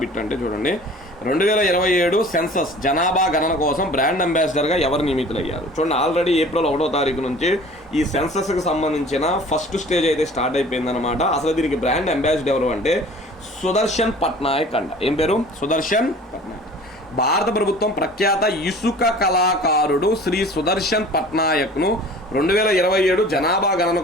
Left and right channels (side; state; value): both; normal; correlation 0.45